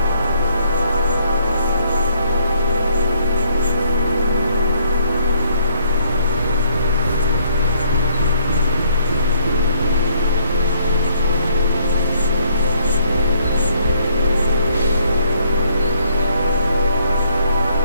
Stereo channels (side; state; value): both; inverted; correlation -0.67